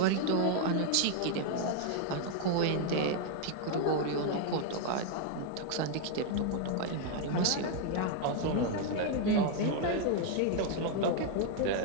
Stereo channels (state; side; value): different; both; correlation 0.00